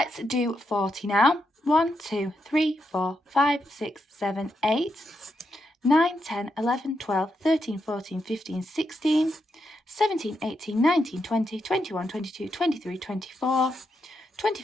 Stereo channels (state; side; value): normal; both; correlation 0.82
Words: do 40 now. 1, 2, 3, 4, 5, 6, 7, 8, 9, 10, 11, 12, 13, 14, 15, 16, 17, 18, 19, 20, 21, 22, 23, 24,